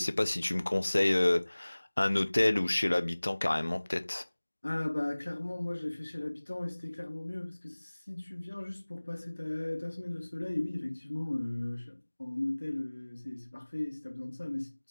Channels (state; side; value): inverted; both; correlation -1.00